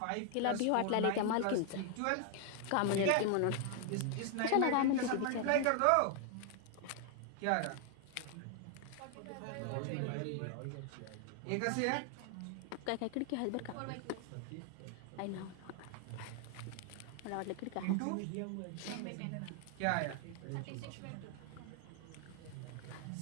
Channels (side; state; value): both; different; correlation 0.00